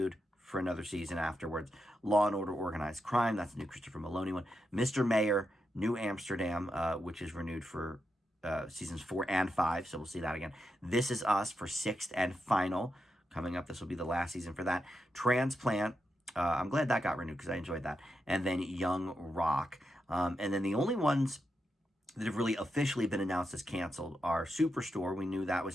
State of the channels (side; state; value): both; normal; correlation 0.86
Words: for another season afterwards. Law & Order Organized Crime, that's the new Christopher Maloney one. Mr. Mayor, New Amsterdam, which is renewed for seasons 4 and 5, so we'll see that again. This Is Us for 6th and final. Coming up, this will be the last season for that. Transplant, I'm glad that got renewed because I enjoyed that. And then Young Rock. And then the only ones that have really officially been announced as canceled are Superstore, we knew that